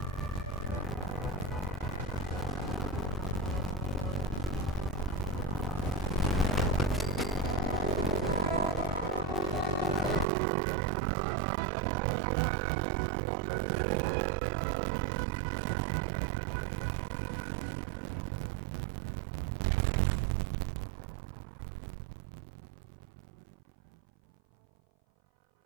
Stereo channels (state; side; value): drops out; left; at 10.2 s